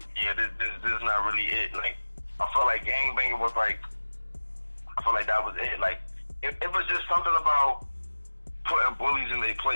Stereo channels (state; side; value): inverted; both; correlation -1.00